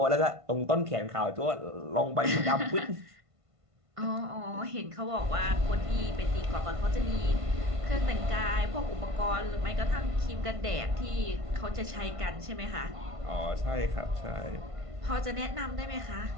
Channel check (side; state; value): left; late; 1.5 ms